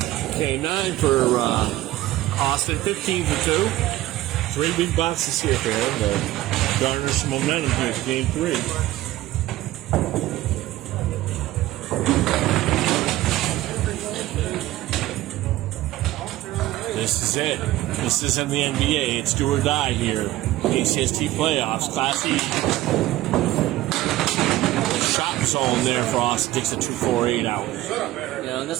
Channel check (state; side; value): quieter; left; 16.0 dB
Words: Okay, 9 for Austin, 15 for 2. 3 big boxes here for him to garner some momentum here for game 3. This is it. This isn't the NBA. It's do or die here. ACST playoffs, Class E. Shot zone there for Austin. Takes a 2-4-8 out. You know, and